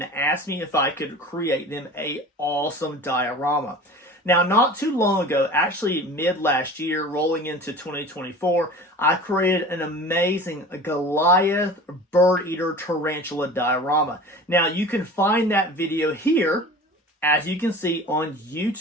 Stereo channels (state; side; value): normal; both; correlation 0.38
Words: asked me if I could create them a awesome diorama. Now, not too long ago, actually mid last year, rolling into 2024, I created an amazing Goliath Birdeater tarantula diorama. Now, you can find that video here, as you can see, on